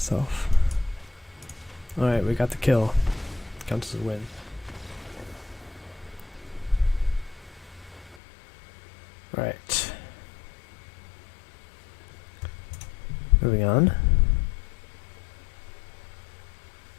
Alright, we got the kill. Counts as a win. Right. Moving on.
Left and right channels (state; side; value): drops out; right; at 8.2 s